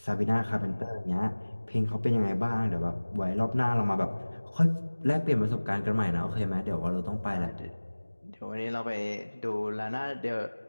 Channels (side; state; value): both; inverted; correlation -1.00